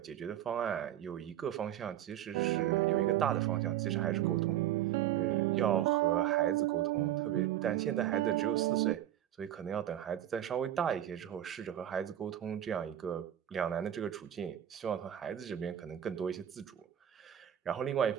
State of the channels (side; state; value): left; quieter; 11.5 dB